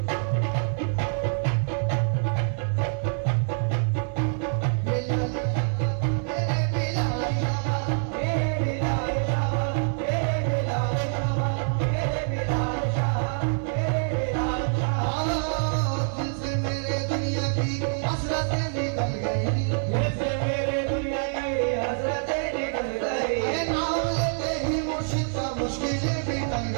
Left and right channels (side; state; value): left; silent; 61 dB below the other